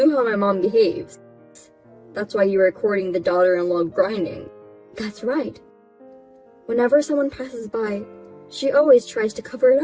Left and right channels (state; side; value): identical; both; correlation 1.00